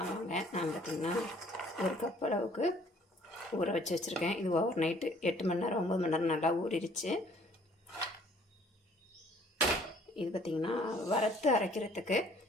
நான் பார்த்திங்கன்னா ஒரு கப் அளவுக்கு ஊற வச்சு வச்சுருக்கேன். இது ஓவர் நைட்டு 8 மணி நேரம் 9 மணி நேரம் நல்லா ஊறிடுச்சு. இது பார்த்திங்கன்னா வறுத்து அரைக்கிறதுக்கு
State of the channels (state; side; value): normal; both; correlation 0.58